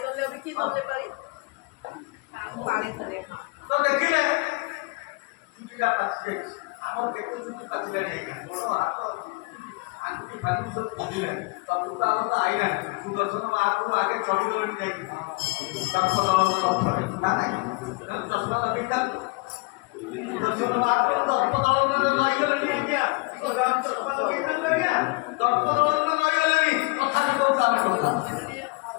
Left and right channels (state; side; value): quieter; right; 27.1 dB